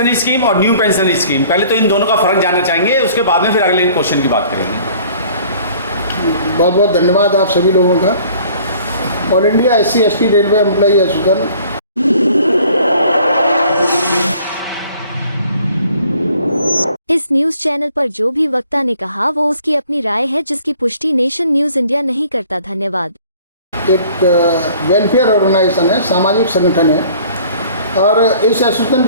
scheme और new pension scheme, पहले तो इन दोनों का फ़र्क जानना चाहेंगे, उसके बाद में फिर अगले क्वेश्चन की बात करेंगे। बहुत बहुत धन्यवाद आप सभी लोगों का। All India SC/ST railway employee association इस न्यूज चैनल पर जो भी वक्ता ने कहा वो उसकी अपनी राय है, जिसकी पुष्टि नेशन न्यूज इंडिया नहीं करता। धन्यवाद। एक वेलफेयर ऑर्गेनाइजेशन है, सामाजिक संगठन है, और इस एसोसिएशन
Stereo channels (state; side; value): inverted; both; correlation -0.54